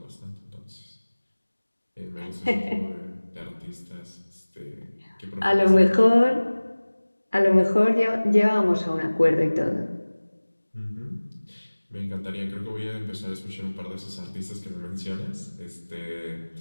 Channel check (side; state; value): both; inverted; correlation -1.00